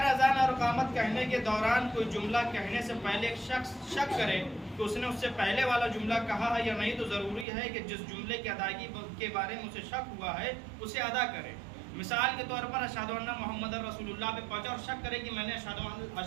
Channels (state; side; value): drops out; left; at 7.5 s